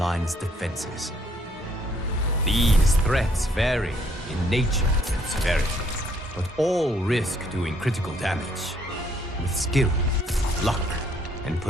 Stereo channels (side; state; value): both; normal; correlation 0.67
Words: defenses. These threats vary in nature and severity, but all risk doing critical damage. With skill, luck, and